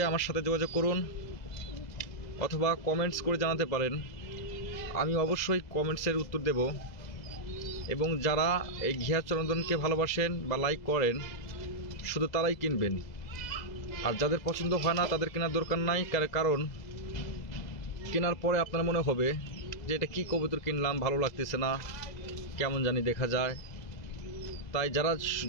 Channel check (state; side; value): late; right; 2.0 ms